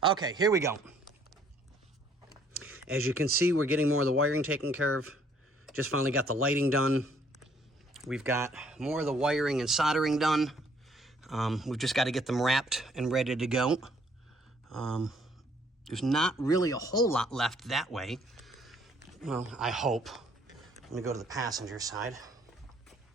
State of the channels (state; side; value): normal; both; correlation 0.64